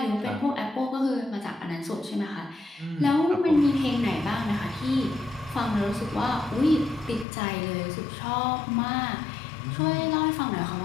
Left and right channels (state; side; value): drops out; right; at 7.2 s